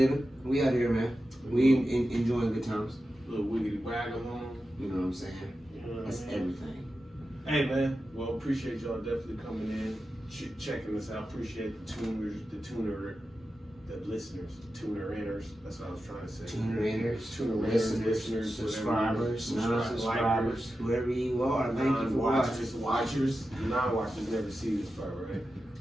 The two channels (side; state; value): both; normal; correlation 0.92